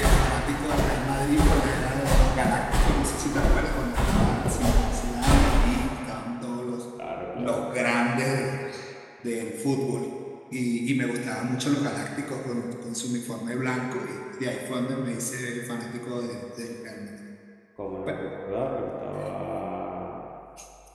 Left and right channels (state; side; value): identical; both; correlation 1.00